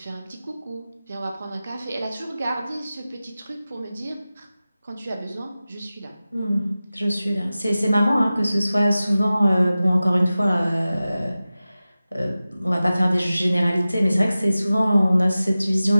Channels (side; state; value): both; inverted; correlation -0.96